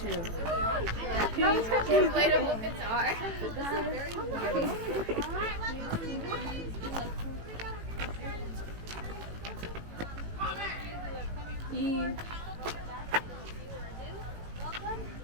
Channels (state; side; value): late; left; 18 ms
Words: Inflatable guitar. Welcome.